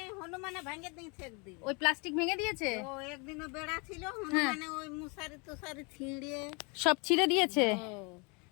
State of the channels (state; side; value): quieter; right; 31.1 dB